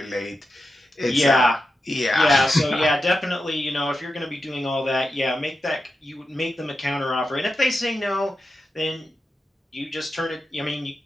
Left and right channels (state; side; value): normal; both; correlation 0.89